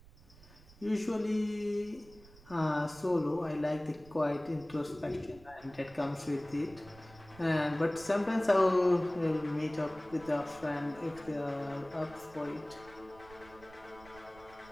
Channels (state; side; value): noise; right; rumble, 22 dB below the sound